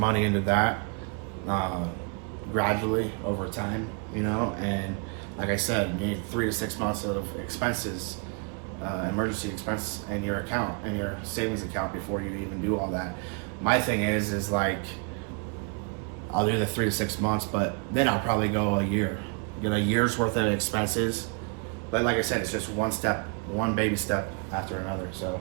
into that gradually over time, you know, and like I said, you need 3 to 6 months of expenses, emergency expense in your account, in your savings account, before you even do all that. My thing is like, I'll do the 3 to 6 months, but then I'll probably go a year, get a year's worth of expenses. But like I said, it's just one baby step after another. So,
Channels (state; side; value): quieter; left; 36.3 dB